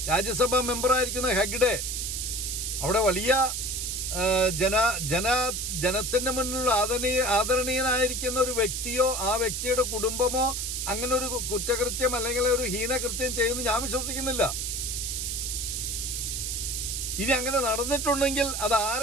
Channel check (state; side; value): noise; right; hiss, 2 dB below the sound